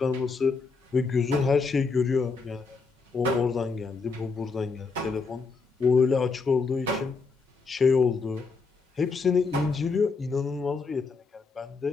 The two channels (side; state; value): right; quieter; 4.5 dB